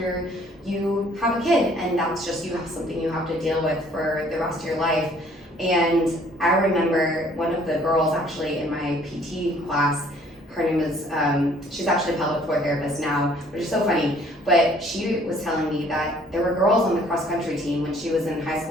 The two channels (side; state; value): both; normal; correlation 0.58